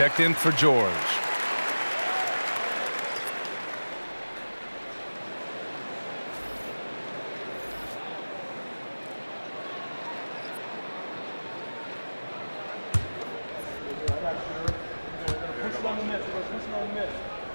in for George.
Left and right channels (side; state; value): both; inverted; correlation -1.00